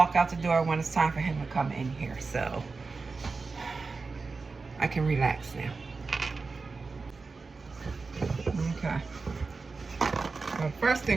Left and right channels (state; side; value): quieter; left; 4.2 dB